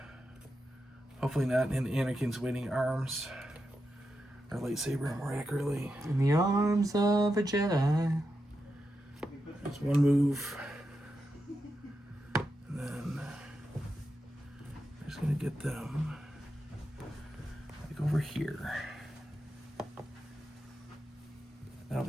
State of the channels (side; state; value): both; normal; correlation 0.87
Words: Hopefully not in Anakin's waiting arms. Or lightsaber, more accurately. In the arms of a Jedi. There's 1 move. And then I'm just going to get them like over here. That'll